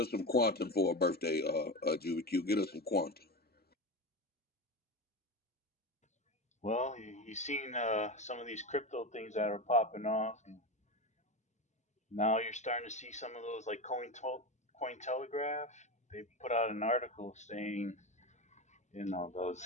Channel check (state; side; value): normal; both; correlation 0.21